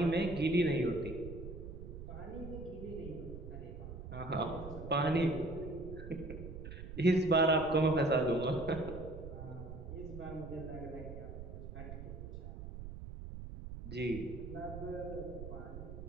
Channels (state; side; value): noise; right; rumble, 10 dB below the sound